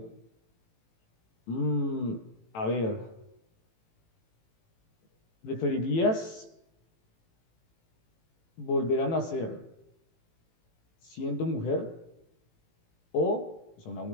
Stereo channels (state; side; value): late; right; 18 ms